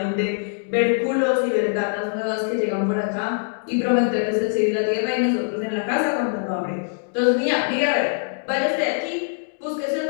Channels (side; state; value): right; silent; digital silence